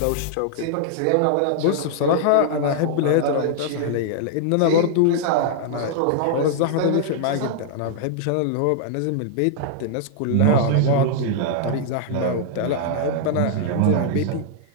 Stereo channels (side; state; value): both; different; correlation -0.01